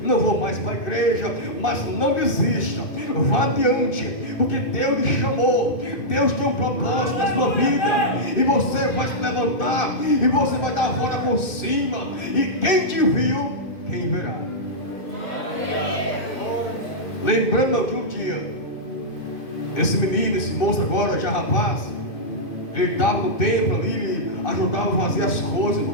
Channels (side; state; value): right; late; 2.1 ms